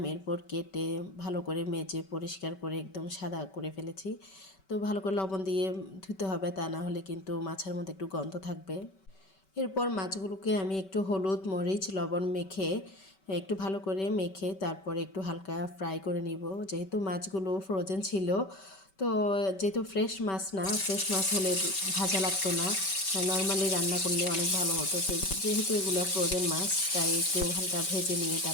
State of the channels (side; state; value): right; late; 5.2 ms